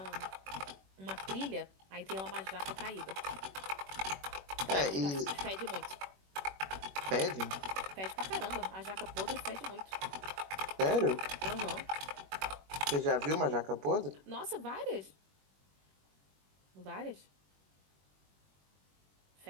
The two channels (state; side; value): late; left; 21 ms